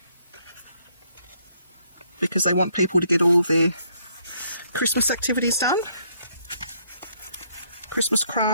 because they want people to get all their Christmas activities done. Christmas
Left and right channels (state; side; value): inverted; both; correlation -0.70